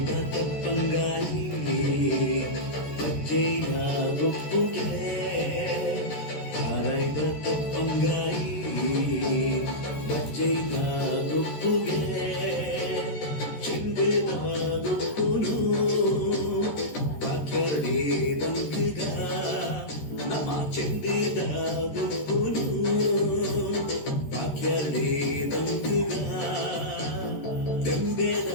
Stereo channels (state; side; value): late; right; 14 ms